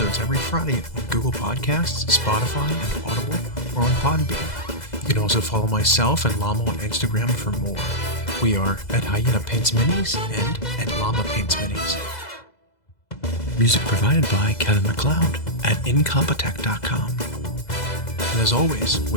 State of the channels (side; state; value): right; late; 2.0 ms